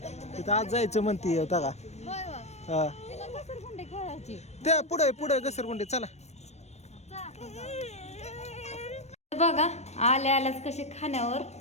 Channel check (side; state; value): right; late; 0.32 ms